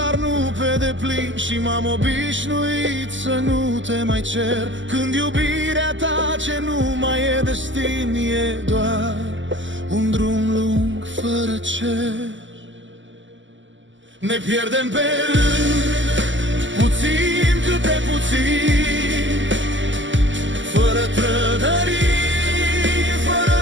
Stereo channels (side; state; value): left; late; 0.54 ms